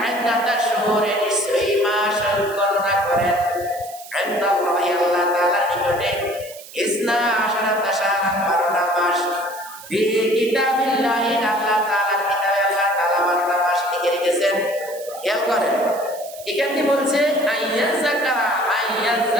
ইদ্দাতাশ শুহুরি, নিশ্চয়ই মাস গণনা করেন ইনদাল্লাহি, আল্লাহ তাআলার নিকটে ইসনা আশারাতা শাহরান, 12টা মাস ফি কিতাবিল্লাহি, আল্লাহ তাআলার কিতাবে আল্লাহ তাআলা 12টা মাস লিখে রেখেছেন। খেয়াল করেন, এখানে বলছে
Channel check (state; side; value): noise; right; hiss, 17 dB below the sound